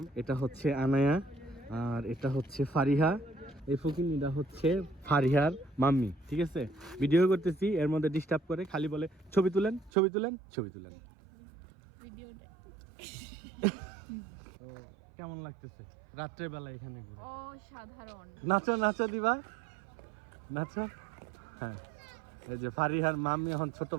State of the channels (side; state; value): left; drops out; at 9.9 s